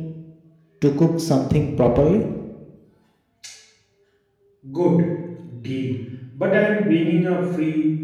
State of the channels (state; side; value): identical; both; correlation 1.00